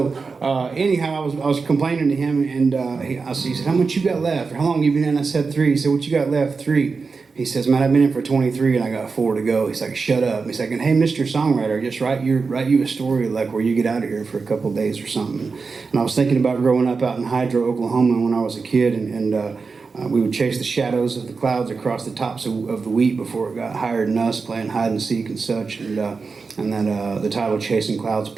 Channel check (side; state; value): left; quieter; 4.6 dB